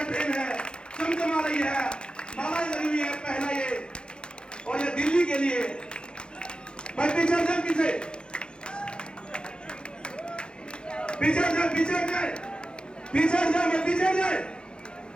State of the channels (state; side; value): late; right; 0.051 ms